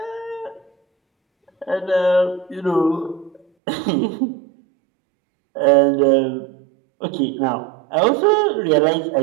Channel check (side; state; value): left; drops out; at 3.4 s